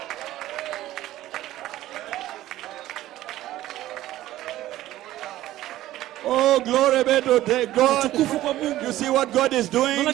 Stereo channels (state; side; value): quieter; left; 14.8 dB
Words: Oh, glory be to God. You see what God is doing?